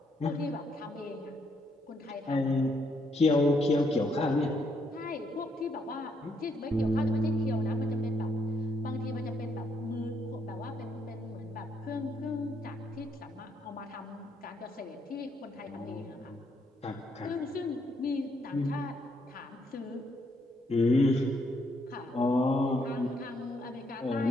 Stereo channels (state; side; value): normal; both; correlation 0.74